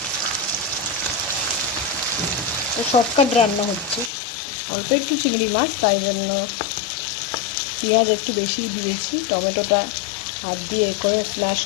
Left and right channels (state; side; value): drops out; right; at 4.1 s